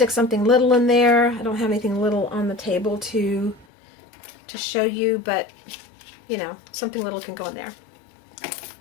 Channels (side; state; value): right; drops out; at 3.7 s